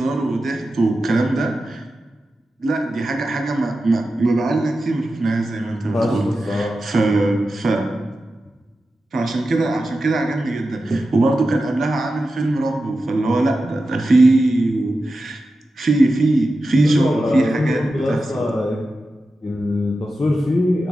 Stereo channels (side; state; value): both; normal; correlation 0.92